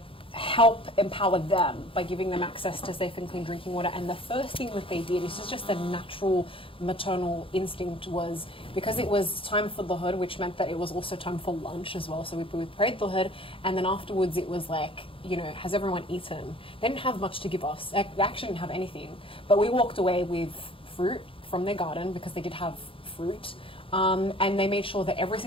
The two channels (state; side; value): late; right; 0.26 ms